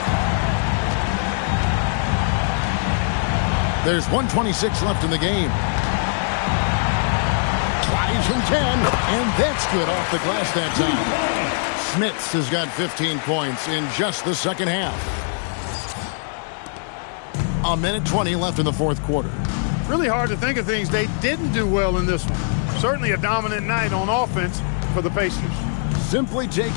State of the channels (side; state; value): right; silent; digital silence